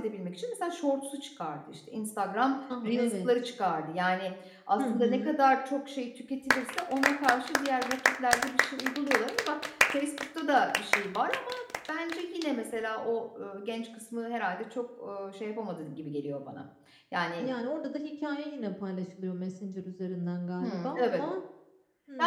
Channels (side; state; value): both; identical; correlation 1.00